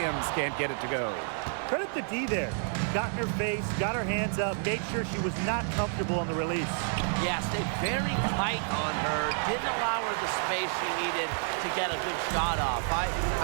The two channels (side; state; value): left; silent; 58 dB below the other